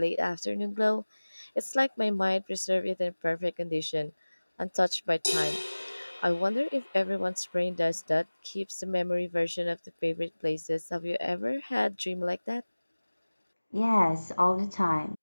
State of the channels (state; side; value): inverted; both; correlation -1.00